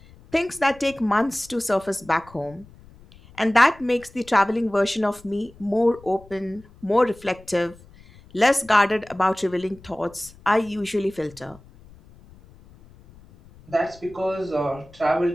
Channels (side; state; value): left; noise; rumble, 24 dB below the sound